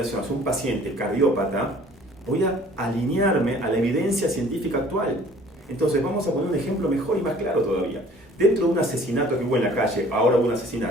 hacia un paciente cardiópata, voy a alinearme a la evidencia científica actual. Entonces vamos a poner un ejemplo mejor y más claro todavía. Dentro de un asesinato que hubo en la calle, ahora hubo un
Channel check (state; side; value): normal; both; correlation 0.52